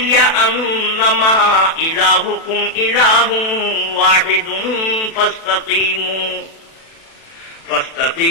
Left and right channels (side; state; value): right; late; 36 ms